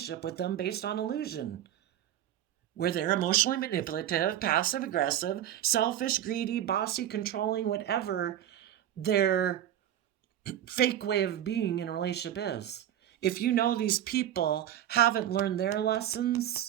with them based on illusion, where they're emotionally manipulative, passive aggressive, selfish, greedy, bossy, controlling, whatever their fake way of being in a relationship is. If these people haven't learned their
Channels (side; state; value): left; quieter; 11.4 dB